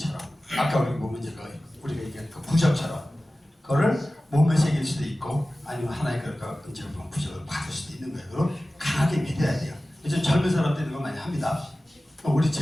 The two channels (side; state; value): both; normal; correlation 0.96